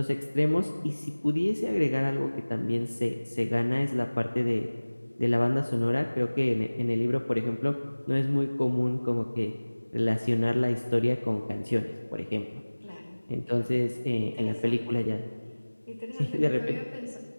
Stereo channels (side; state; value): both; inverted; correlation -1.00